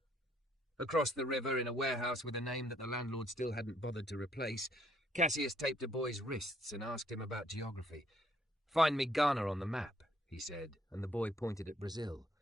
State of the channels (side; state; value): both; normal; correlation 0.68